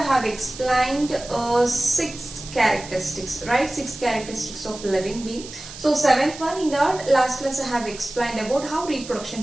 I have explained 6 characteristics, right? 6 characteristics of living being. So seventh one, in the last class I have explained about how reproduction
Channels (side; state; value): right; noise; hiss, 14 dB below the sound